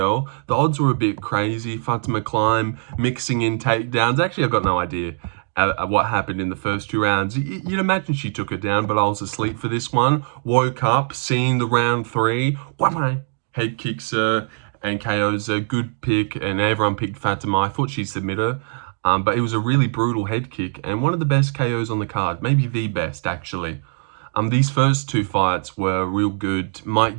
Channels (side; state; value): left; silent; digital silence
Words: The odds were a bit crazy. Fatima Kline mixing in takedowns. Actually, I've got no idea what happened in the first two rounds. You'd imagine she took it down, but I was asleep for this one. Woke up, seeing the round three. Head kicks her and KOs a good pick, and everyone picked Fatima. I thought she'd submit her, but it was a really brutal head kick and one of the best KOs on the card. Maybe the best, actually. These first two fights were real good. Mike